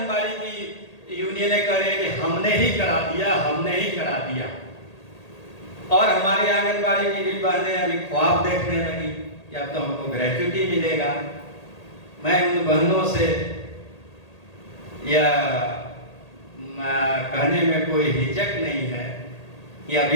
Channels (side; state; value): right; late; 1.8 ms